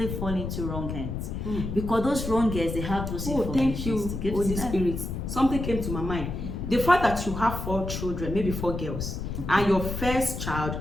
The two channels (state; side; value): noise; left; rumble, 5 dB below the sound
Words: fall into wrong hands. Because those wrong hands, they have those thank you, Holy Spirit. Something came to my mind. The fact that you have 4 children, maybe 4 girls, and your first child